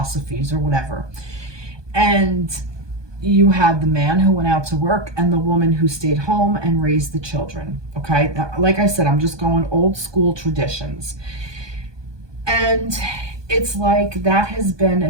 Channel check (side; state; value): left; late; 1.2 ms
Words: or whatever. And you had the man who went out to work and the woman who stayed home and raised the children, okay? Now, like I said, I'm just going old school traditions. And it's like that has been